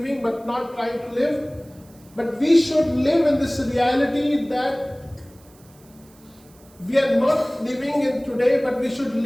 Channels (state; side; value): noise; right; hiss, 28 dB below the sound